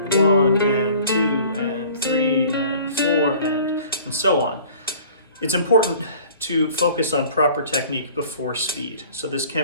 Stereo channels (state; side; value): inverted; both; correlation -0.48